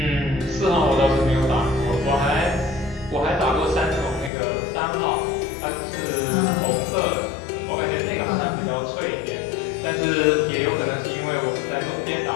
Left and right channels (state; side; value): drops out; right; at 4.3 s